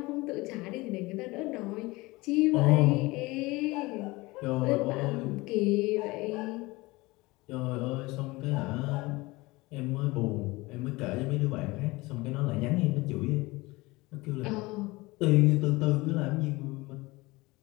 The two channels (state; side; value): quieter; right; 22.1 dB